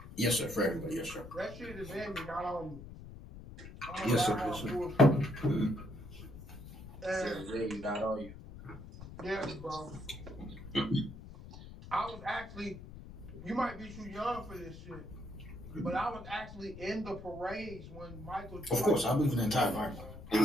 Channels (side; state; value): left; noise; rumble, 14 dB below the sound